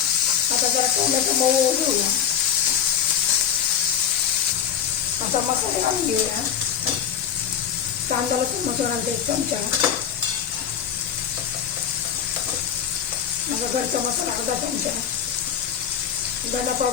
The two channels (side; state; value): right; quieter; 8.9 dB